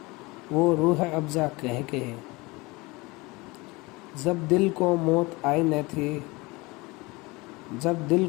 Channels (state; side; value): quieter; right; 23.9 dB